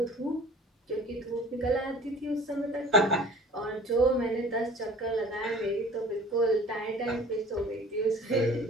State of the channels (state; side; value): normal; both; correlation 0.46